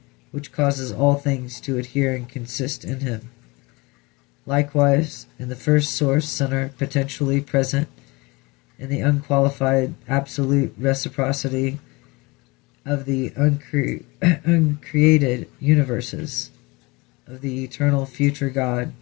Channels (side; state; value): right; quieter; 25.1 dB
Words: which causes all things to adhere and consist in him. Likewise, in the first source center potentially present in the unqualified absolute reciprocity of the uncreated universes of the eternal future God,